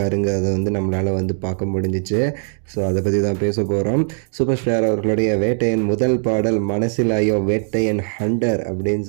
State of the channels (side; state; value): left; silent; digital silence